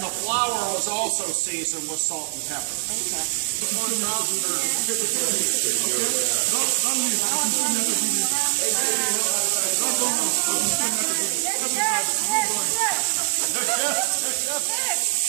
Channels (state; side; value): silent; left; digital silence